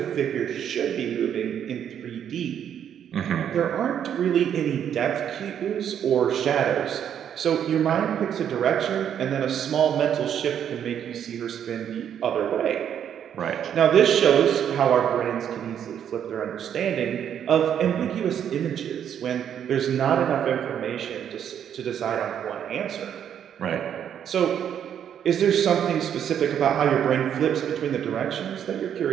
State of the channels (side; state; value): left; quieter; 9.1 dB